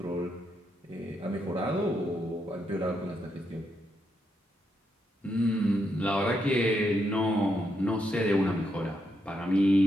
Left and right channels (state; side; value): normal; both; correlation 0.80